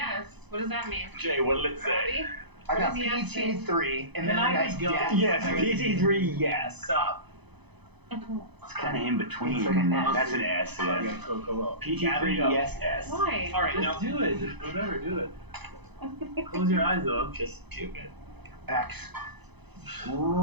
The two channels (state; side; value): late; left; 0.99 ms